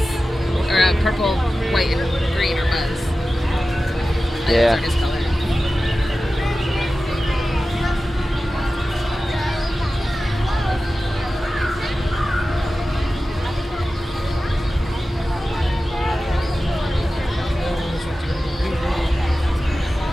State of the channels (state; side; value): normal; both; correlation 0.95